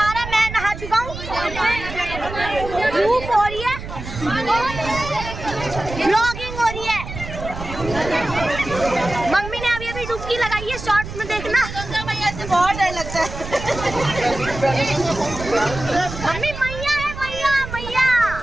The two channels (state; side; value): noise; right; rumble, 9 dB below the sound